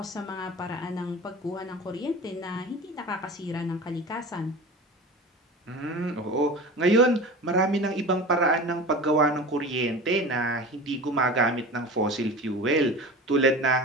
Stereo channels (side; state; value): both; normal; correlation 0.34